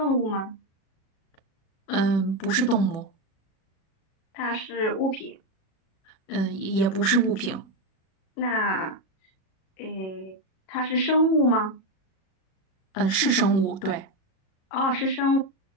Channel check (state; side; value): late; right; 37 ms